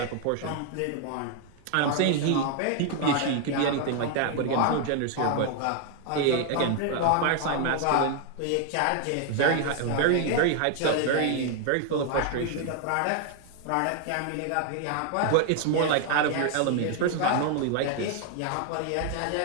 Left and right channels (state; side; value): different; both; correlation 0.00